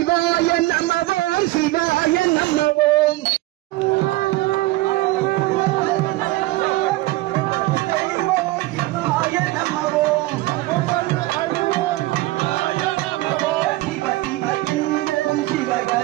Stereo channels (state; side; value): quieter; left; 19.0 dB